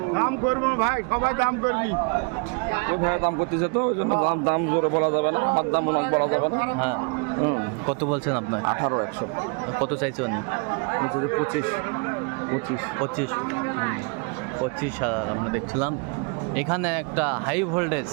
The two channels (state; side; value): quieter; left; 34.2 dB